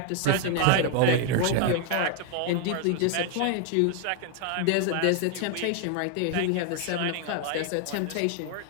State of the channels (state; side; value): different; both; correlation 0.00